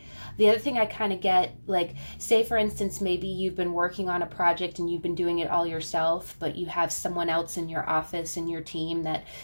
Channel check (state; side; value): inverted; both; correlation -1.00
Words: The other thing I kind of get, like, say for instance, maybe you've been working on a project and you've been doing it all yourself, but you have someone else in your office, in your team that